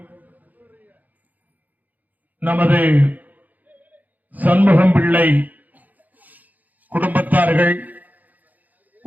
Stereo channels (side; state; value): left; late; 0.081 ms